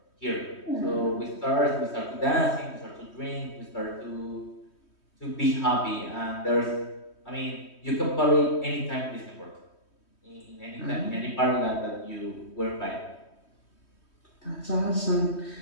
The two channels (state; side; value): late; right; 3.1 ms